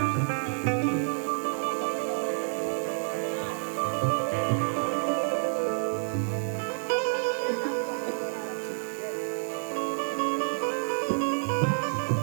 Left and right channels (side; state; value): left; silent; digital silence